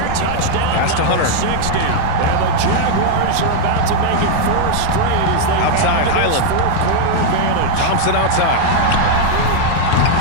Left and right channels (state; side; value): different; both; correlation 0.00